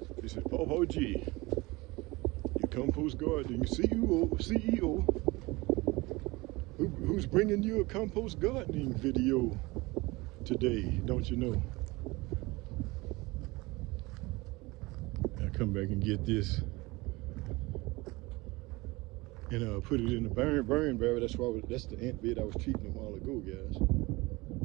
This is Pt1, your compost gardening CEO, who's bringing you a compost gardening video today, don't you know? I'll come back and get this and put it in the burn barrel. That's the ant bed I was treating a while ago, guys.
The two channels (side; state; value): left; quieter; 22.7 dB